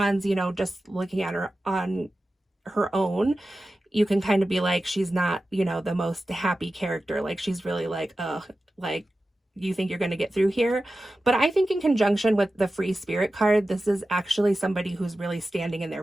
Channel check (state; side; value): normal; both; correlation 0.94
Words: you know, just looking at her on her own, you can kind of be like, she's not, you know, the most happy character. Like she's really like, like, you think you're going to get through here. But I think in conjunction with the free spirit card, this is actually somebody who's really standing in their